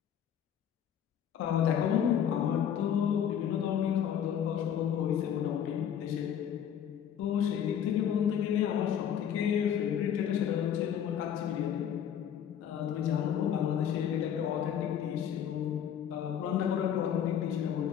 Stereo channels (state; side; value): quieter; right; 9.1 dB